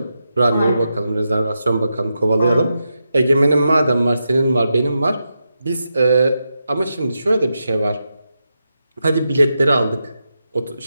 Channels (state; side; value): inverted; both; correlation -0.87